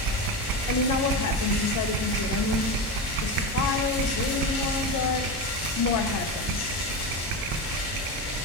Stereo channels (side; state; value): both; normal; correlation 0.19